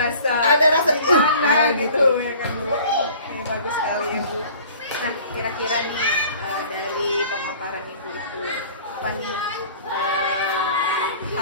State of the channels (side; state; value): both; inverted; correlation -0.48